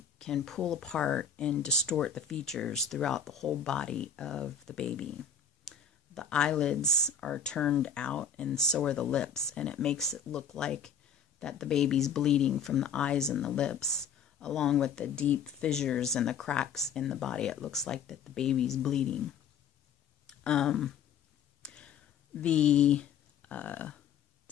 can pull apart and distort the features throughout the whole body of the baby. The eyelids are turned out, and so are the lips, and it makes it look like that the baby's bleeding from the eyes and the lips, along with the deep fissures and the cracks in the body. It looks like that the baby's bleeding. The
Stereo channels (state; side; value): quieter; right; 6.9 dB